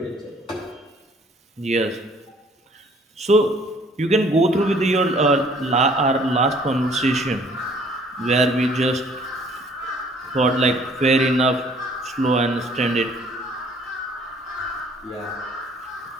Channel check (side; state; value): both; normal; correlation 0.58